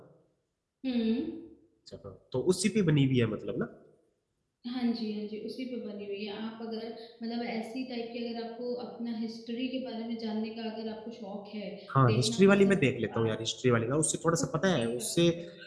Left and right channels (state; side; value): identical; both; correlation 1.00